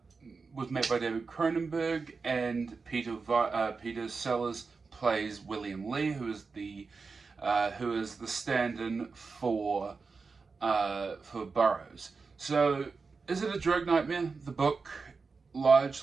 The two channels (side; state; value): left; quieter; 4.6 dB